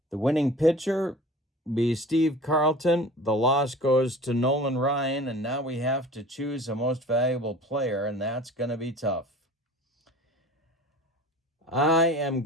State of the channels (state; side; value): normal; both; correlation 0.42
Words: The winning pitcher be Steve Carlton. The loss goes to Nolan Ryan, and now we have to choose a most valuable player, and that's going to be tough. I am